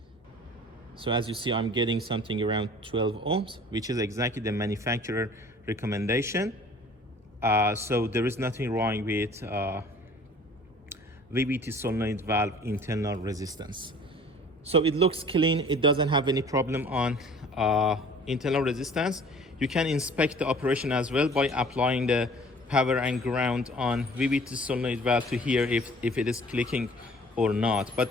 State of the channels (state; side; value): normal; both; correlation 0.49